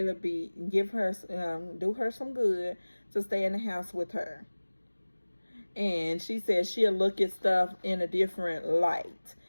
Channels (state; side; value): inverted; both; correlation -1.00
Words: do her some good to stay in the house with her. And she said she'll look at stuff in a different light